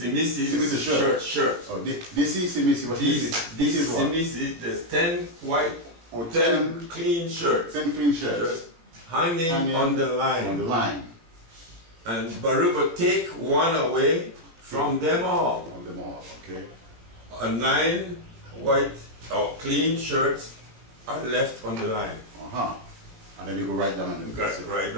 shirt. Oh, Disi Simisi. What is Disi Simisi. There's 10 white, 10 clean shirts. 10 clean shirts. Hanging on the line. On the line. And barüba take one away from them all. On them all, okay. 9 white or clean shirts are left on the line. Uh-huh. And then we go right down and right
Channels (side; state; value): left; late; 18 ms